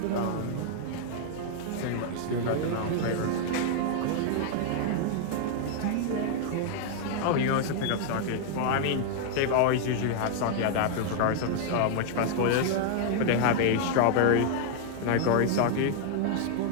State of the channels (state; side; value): different; both; correlation -0.01